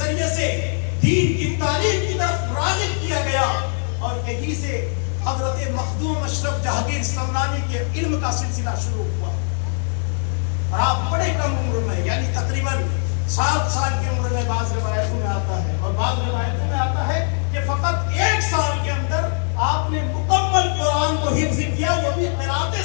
سے دین کی تعلیم کی طرف راغب کیا گیا, اور یہی سے حضرت مخدوم اشرف جہانگیر سمنانی کے علم کا سلسلہ شروع ہوا. اور آپ بڑے کم عمر میں, یعنی تقریباً 7 سال کی عمر میں بعض روایتوں میں آتا ہے, اور بعض روایتوں میں آتا ہے کہ فقط 1 سال کے اندر آپ نے مکمل قرآن کو حفظ کیا, وہ بھی قرات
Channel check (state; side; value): silent; right; 65 dB below the other